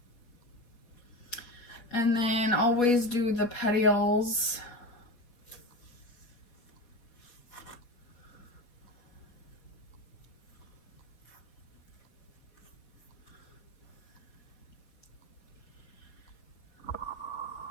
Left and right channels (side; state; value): right; late; 4.2 ms